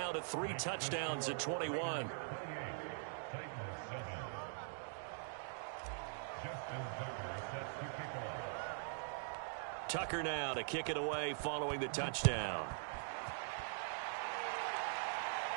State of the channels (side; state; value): left; silent; digital silence